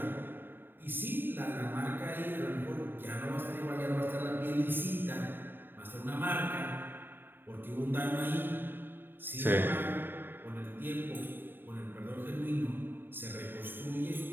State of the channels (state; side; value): late; left; 0.097 ms